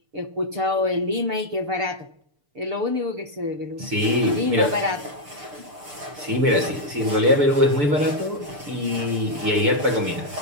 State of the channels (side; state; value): left; late; 6.8 ms